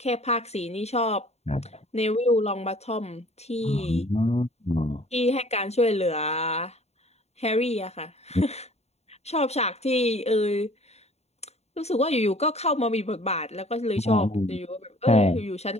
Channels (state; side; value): late; right; 0.31 ms